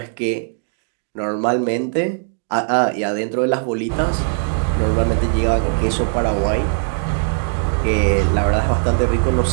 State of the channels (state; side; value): silent; left; digital silence